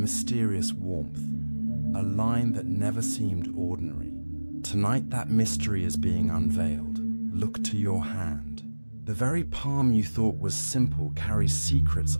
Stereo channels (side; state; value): both; inverted; correlation -1.00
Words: warmth, a line that never seemed ordinary. Tonight that mystery is being unveiled. Look to your hand. The very palm you thought was simple carries secrets